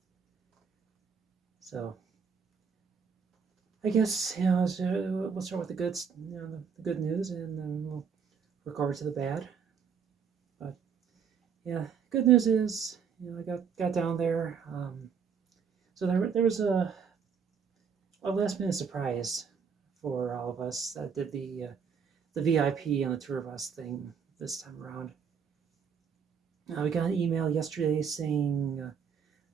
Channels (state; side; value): quieter; left; 6.6 dB